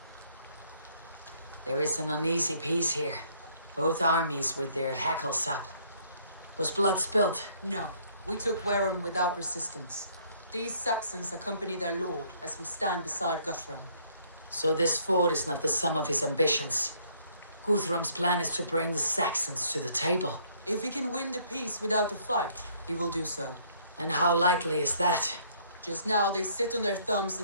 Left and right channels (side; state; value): both; inverted; correlation -0.63